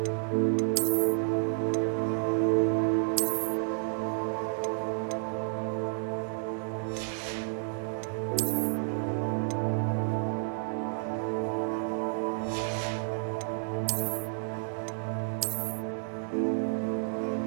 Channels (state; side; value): silent; left; digital silence